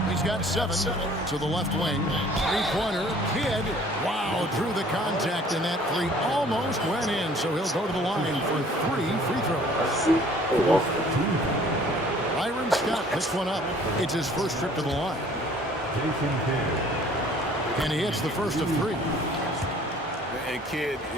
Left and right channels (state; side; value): normal; both; correlation 0.54